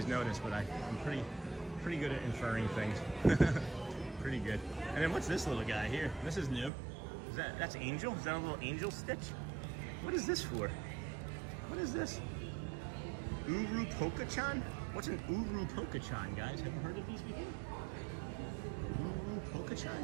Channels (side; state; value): left; drops out; at 6.7 s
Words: noticed, but I'm pretty good at inferring things. Pretty good. And then what's this little guy here? This is new. That's Angel? Is that a little Angel stitch? What is this for? What is this? Uru Poka-chan? What's an Uru Poka-chan, guys? Have you heard of these before? Uru